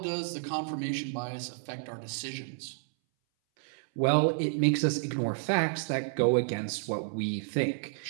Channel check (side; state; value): left; silent; 57 dB below the other